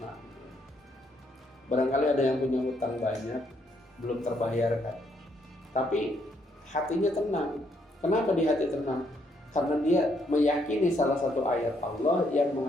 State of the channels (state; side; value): normal; both; correlation 0.72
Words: Barangkali ada yang punya hutang banyak, belum terbayarkan, tapi hatinya tenang. Kenapa di hati tenang? Karena dia meyakini salah satu ayat Allah yang